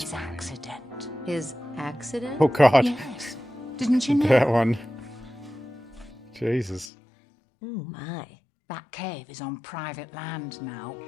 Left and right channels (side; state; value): right; drops out; at 6.9 s